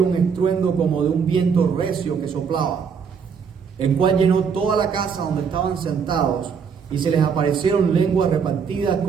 un estruendo como de un viento recio que soplaba, el cual llenó toda la casa donde estaban sentados, y se les aparecieron lenguas repartidas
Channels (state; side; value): quieter; left; 6.3 dB